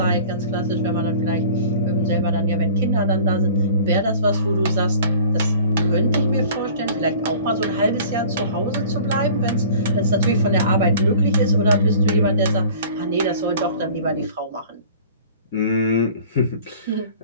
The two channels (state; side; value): inverted; both; correlation -0.46